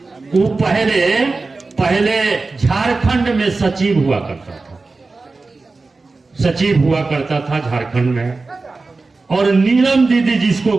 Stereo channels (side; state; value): left; quieter; 3.7 dB